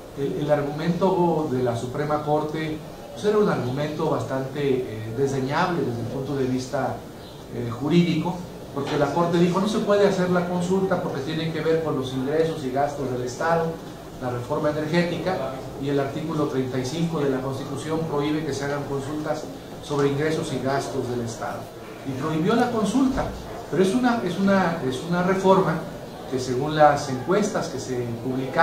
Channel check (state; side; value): identical; both; correlation 1.00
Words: El argumento de la Suprema Corte pues era un argumento bastante desdeñable desde el punto de vista jurídico, porque la Corte dijo no se puede hacer la consulta porque tiene que ver con los ingresos y gastos del Estado, la reforma energética, y el artículo 35 de la Constitución prohíbe que se hagan consultas sobre ingresos y gastos del Estado. Y prohibió la consulta, pero es una reforma que según las encuestas que se